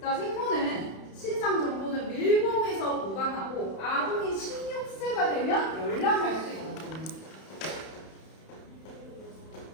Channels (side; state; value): right; late; 31 ms